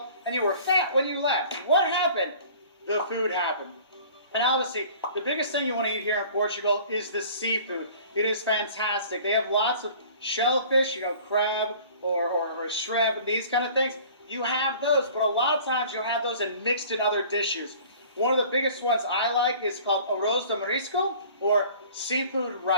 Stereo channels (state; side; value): inverted; both; correlation -0.47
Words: and you were fat when you left. What happened? The food happened. And obviously, the biggest thing you want to eat here in Portugal is the seafood. It is fantastic. They have lots of shellfish, you know, crab or shrimp and these kind of things. You have those, but a lot of times you'll have those and mixed in other dishes. One of the biggest ones I like is called arroz de marisco, or seafood